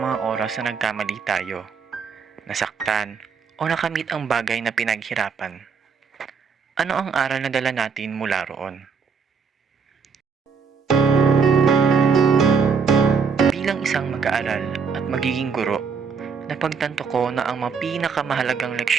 mga oras na nagkamali tayo, nasaktan, o nakamit ang bagay na pinaghirapan. Ano ang aral na dala natin mula roon? Bilang isang mag-aaral at magiging guro, napagtanto ko na ang mga pinakamahalagang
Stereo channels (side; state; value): left; quieter; 5.8 dB